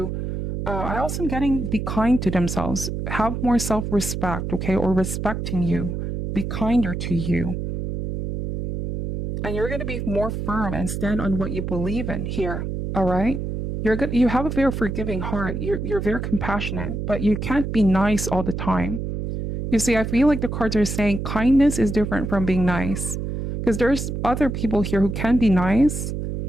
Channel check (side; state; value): right; noise; hum, 4 dB below the sound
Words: I also am getting be kind to themselves, have more self-respect, okay, or respecting you, be kinder to you. And you're going to be more firm and stand on what you believe in here. All right. You're good. You have a very forgiving heart. You're very compassionate, but you can't be nice all the time. You see, I feel like the cards are saying kindness is different from being nice, because there's other people here who can be nice,